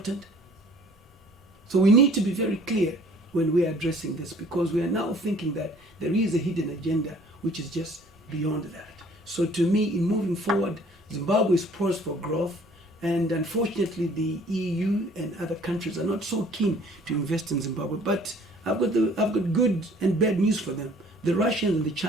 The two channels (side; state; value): both; normal; correlation 0.54